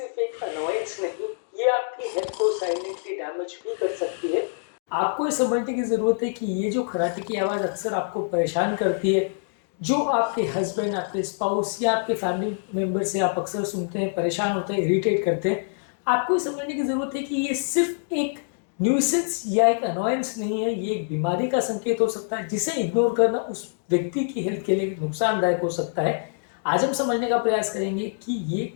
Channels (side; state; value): right; silent; digital silence